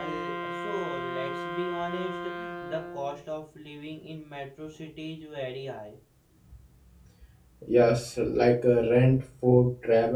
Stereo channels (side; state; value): both; identical; correlation 1.00